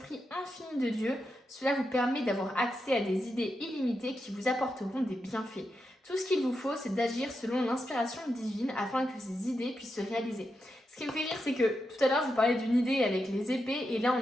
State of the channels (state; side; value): normal; both; correlation 0.86